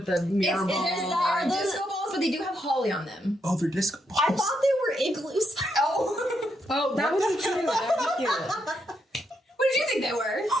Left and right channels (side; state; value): both; normal; correlation 0.79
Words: the mirror ball. Are disco balls, but they do have holly on them. Oh, they're disco balls. I thought they were igloos. Oh. Oh, that would be cute. That would be cute. What did you think they were?